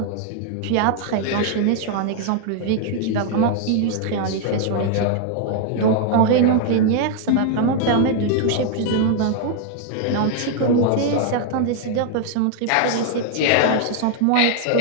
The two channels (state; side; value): different; both; correlation 0.00